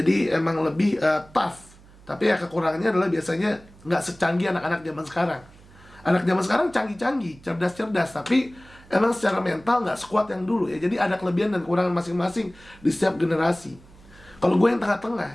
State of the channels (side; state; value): right; noise; hum, 24 dB below the sound